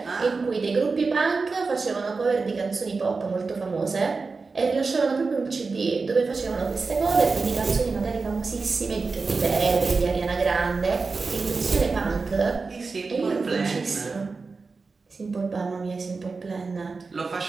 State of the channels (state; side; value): quieter; left; 4.3 dB